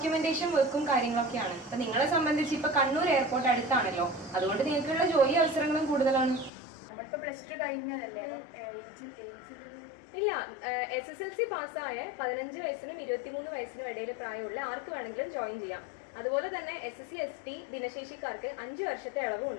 വർക്കും കാര്യങ്ങളൊക്കെയാണ്. അപ്പൊ നിങ്ങളെ സംബന്ധിച്ച് ഇപ്പൊ കണ്ണൂർ എയർപോർട്ട് അടുത്താണല്ലോ, അതുകൊണ്ട് നിങ്ങൾക്കുള്ള ജോലി അവസരങ്ങളും കൂടുതലാണ്. നമ്മളിപ്പോ പ്ലസ് ടു കഴിഞ്ഞതല്ലേ? ഇല്ല, SSLC പാസ്സായ 15 വയസ്സിനും 23 വയസ്സിനും ഇടയിൽ പ്രായമുള്ള ആർക്ക് വേണമെങ്കിലും ജോയിൻ ചെയ്യാം. അതുപോലെ തന്നെ SSC ST ഭിന്നശേഷിക്കാർക്ക് 5 വർഷത്തെ ഇളവും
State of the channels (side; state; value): right; drops out; at 6.5 s